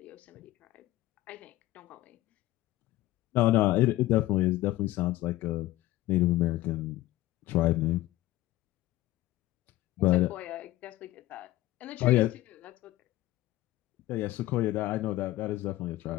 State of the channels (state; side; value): quieter; right; 16.6 dB